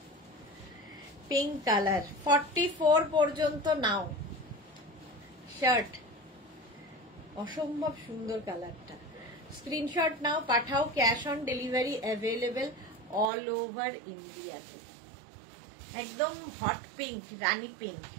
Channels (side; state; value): left; drops out; at 13.3 s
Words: পিঙ্ক কালার। 44 পর্যন্ত নাও শার্ট, অসম্ভব সুন্দর কালারটা। স্ক্রিনশট নাও, পাঠাও, cash on delivery available all over ইন্ডিয়াতে। একদম হট পিঙ্ক, রানী পিঙ্ক,